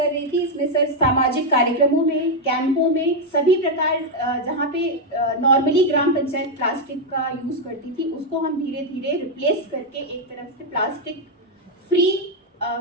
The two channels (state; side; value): normal; both; correlation 0.01